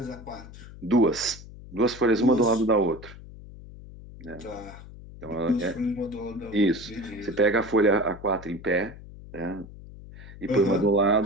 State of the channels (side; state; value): left; noise; hum, 16 dB below the sound